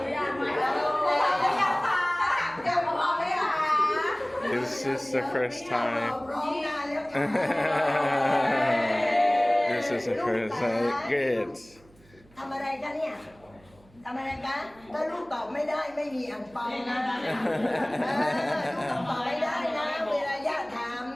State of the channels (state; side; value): noise; right; hum, 28 dB below the sound